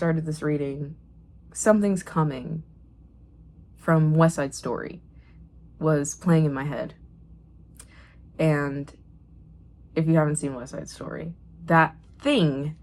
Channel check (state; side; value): identical; both; correlation 1.00